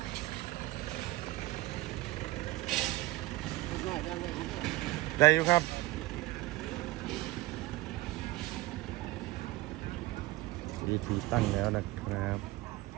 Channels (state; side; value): quieter; left; 19.3 dB